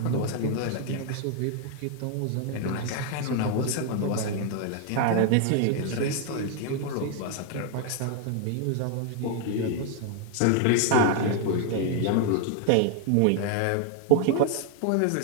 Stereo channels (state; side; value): different; both; correlation 0.00